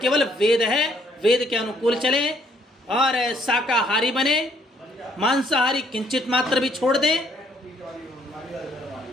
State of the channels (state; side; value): normal; both; correlation 0.67